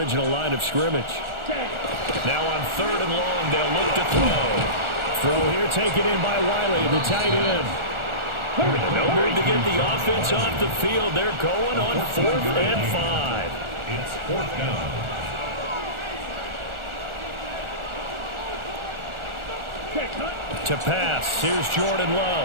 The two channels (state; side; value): late; left; 1.4 ms